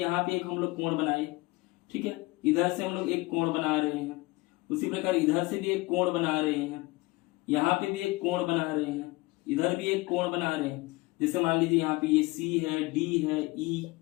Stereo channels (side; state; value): right; quieter; 22.5 dB